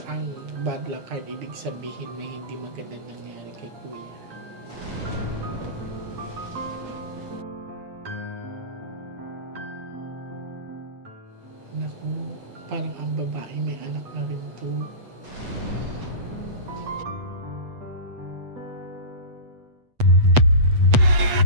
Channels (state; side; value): late; left; 8.1 ms